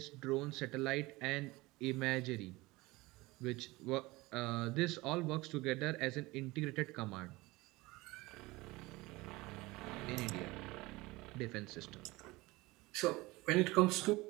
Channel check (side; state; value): left; quieter; 21.3 dB